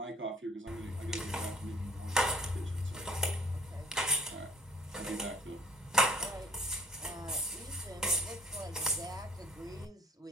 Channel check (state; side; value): normal; both; correlation 0.58